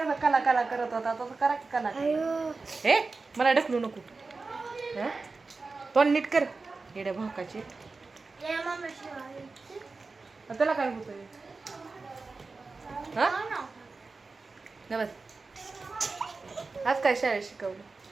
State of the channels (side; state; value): left; quieter; 4.0 dB